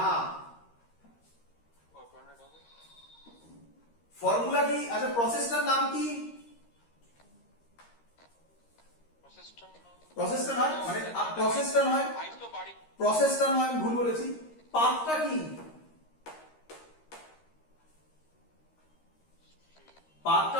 ও 200 হবে। ফর্মুলা কি? আচ্ছা প্রসেসটার নাম কি? প্রসেসটা নয় মানে প্রসেসটা নয়, আইস তো বাড়ি প্রসেসটা নয়, আমি ভুল বলেছি। পাথটা কি? পাথটা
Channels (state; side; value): late; right; 13 ms